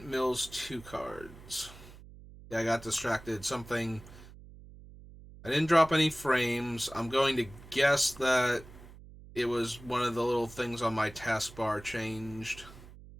mills 2 cards. Yeah, I got distracted. Something. I didn't drop any frames. I'm going to guess that it was one of the little things on my taskbar changed.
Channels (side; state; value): right; noise; hum, 18 dB below the sound